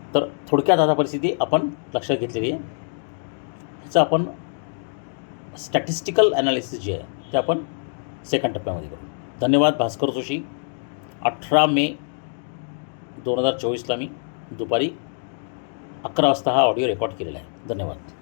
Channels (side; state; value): right; silent; digital silence